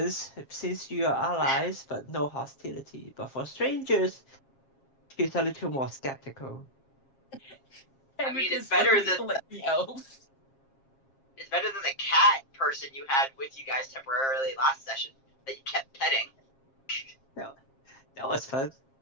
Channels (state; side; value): late; right; 7.4 ms